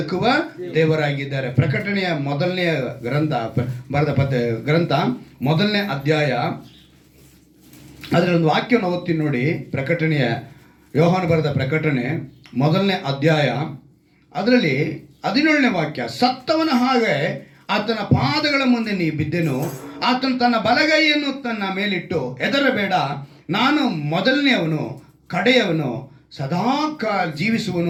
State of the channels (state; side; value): identical; both; correlation 1.00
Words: ದೇವರಾಗಿದ್ದಾರೆ. ಪ್ರಕಟಣೆಯ ಮೊದಲನೇ ಗ್ರಂಥ 1ನೇ ಅಧ್ಯಾಯ ಅದರಲ್ಲಿ ಒಂದು ವಾಕ್ಯವನ್ನು ಓದ್ತೀನಿ ನೋಡಿ. ಪ್ರಕಟಣೆಯ ಯೋಹಾನ ಬರೆದ ಪ್ರಕಟಣೆ 1ನೇ ಅಧ್ಯಾಯ ಅದರಲ್ಲಿ 17ನೇ ವಾಕ್ಯ. ಸತ್ತವನ ಹಾಗೆ ಆತನ ಪಾದಗಳ ಮುಂದೆ ನೀ ಬಿದ್ದೆನು, ಆತನು ತನ್ನ ಬಲಗೈಯನ್ನು ತನ್ನ ಮೇಲಿಟ್ಟು, ಹೆದರಬೇಡ, ನಾನು ಮೊದಲನೆಯವನು ಕಡೆಯವನು, ಸದಾಕಾಲ